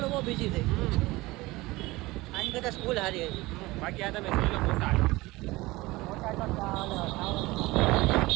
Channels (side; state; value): left; quieter; 20.5 dB